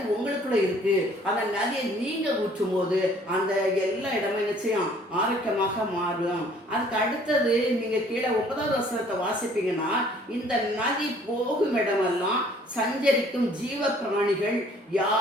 உங்களுக்குள்ள இருக்கு. அந்த நதியை நீங்க ஊற்றும் போது அந்த எல்லா இடமும் நிச்சயம் ஆரோக்கியமாக மாறும். அதுக்கு அடுத்தது நீங்க கீழே 9வது வசனத்தை வாசிப்பீங்கன்னா, இந்த நதி போகும் இடமெல்லாம் சஞ்சரிக்கும் ஜீவ பிராணிகள்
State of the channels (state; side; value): normal; both; correlation 0.57